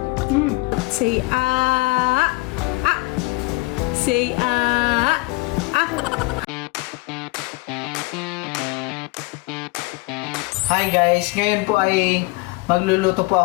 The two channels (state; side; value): quieter; right; 24.4 dB